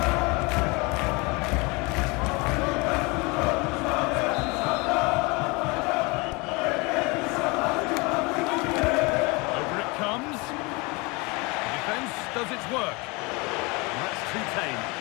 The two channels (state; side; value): quieter; right; 26.9 dB